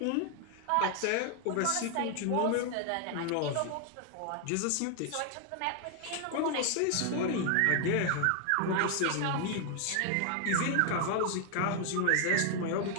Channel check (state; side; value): different; both; correlation 0.00